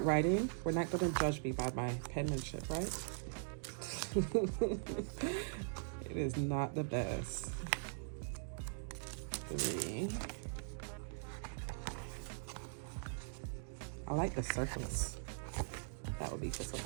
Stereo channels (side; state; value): left; silent; digital silence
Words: writing, we're not going to judge me by my penmanship, right? It is not the best. 3. I like the circles. That would be for